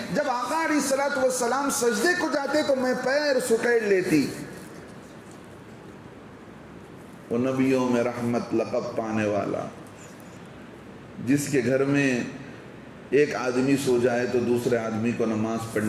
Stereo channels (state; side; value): identical; both; correlation 1.00